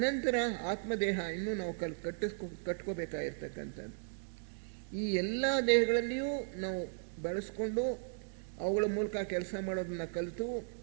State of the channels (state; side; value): silent; left; digital silence